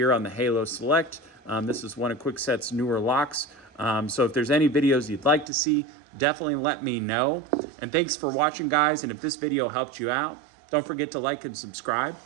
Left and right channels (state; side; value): drops out; left; at 5.5 s